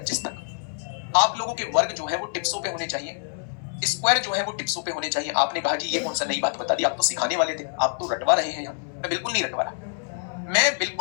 तक आप लोगों के वर्ग जो है वो टिप्सों पे होने चाहिए, स्क्वायर जो है वो टिप्सों पे होने चाहिए। आपने कहा जी ये कौन सा नई बात बता दी, आप तो सिखाने वाले थे, आप तो रटवा रहे हैं यहाँ। मैं बिल्कुल नहीं रटवा रहा, मैं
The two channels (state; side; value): silent; right; 61 dB below the other